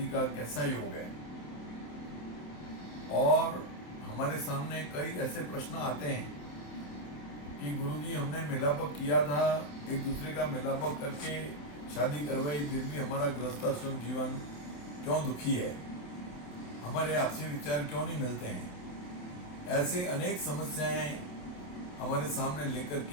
का कैसा योग है। और हमारे सामने कई ऐसे प्रश्न आते हैं कि गुरुजी हमने मिलापक किया था, एक दूसरे का मिलापक करके शादी करवाई, फिर भी हमारा गृहस्थाश्रम जीवन क्यों दुखी है, हमारे आपसी विचार क्यों नहीं मिलते हैं। ऐसे अनेक समस्याएं हमारे सामने लेकर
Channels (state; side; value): late; right; 27 ms